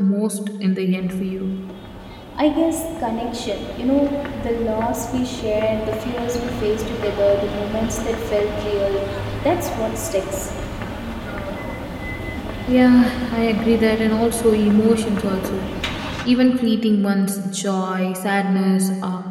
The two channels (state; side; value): identical; both; correlation 1.00